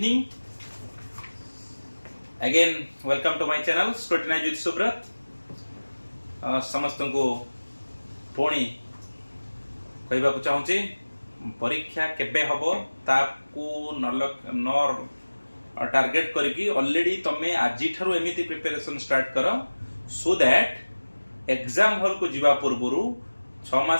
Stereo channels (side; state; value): both; inverted; correlation -1.00